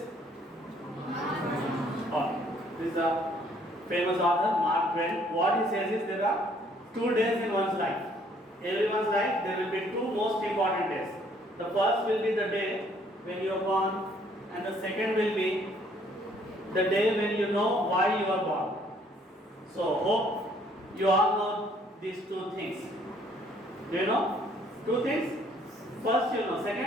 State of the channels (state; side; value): normal; both; correlation 0.63